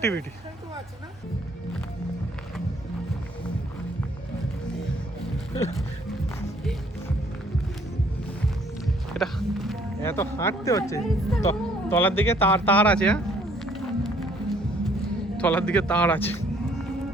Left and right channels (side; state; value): both; normal; correlation 0.62